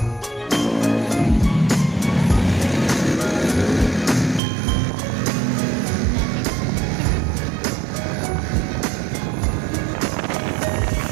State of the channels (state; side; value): drops out; left; at 4.4 s